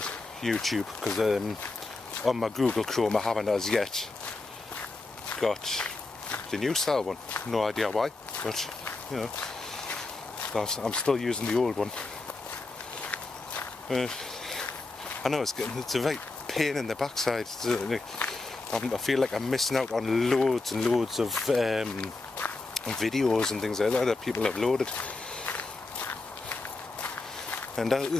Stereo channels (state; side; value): quieter; right; 3.4 dB